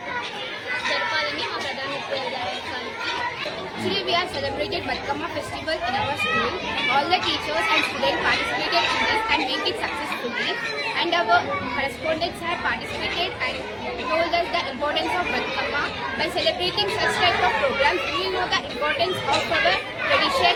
జరపాలని మా ప్రధానోపాధ్యాయులకి. Today we have celebrated Batkama festival in our school. All the teachers and students participated in this and made it successfully. And our correspondents have participated and told us the importance of Batkama. By celebrating such type of programs, we will know the importance of our tradition,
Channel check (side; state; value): both; identical; correlation 1.00